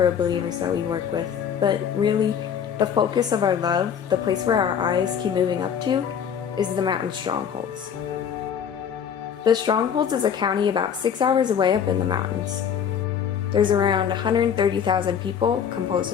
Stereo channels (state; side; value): quieter; right; 8.0 dB